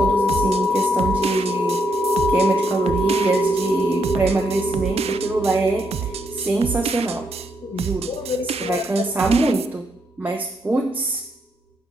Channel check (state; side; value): normal; both; correlation 0.77